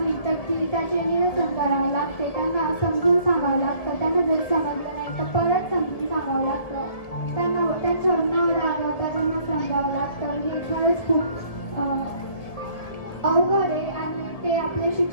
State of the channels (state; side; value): late; right; 1.7 ms